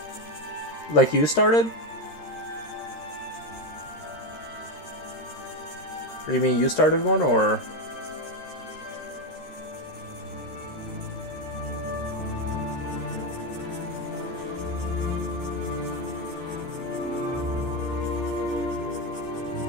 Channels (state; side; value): late; right; 13 ms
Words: Like you started? Or you mean you started one, or?